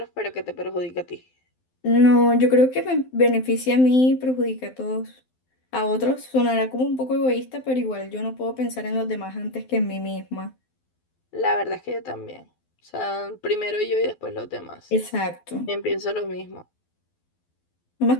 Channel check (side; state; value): right; late; 12 ms